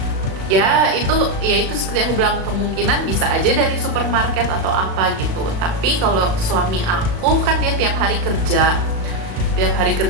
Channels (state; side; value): late; left; 37 ms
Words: Itu seperti aku bilang, kemungkinan bisa aja dari supermarket atau apa gitu. Tapi kalau suami aku kan dia tiap hari kerja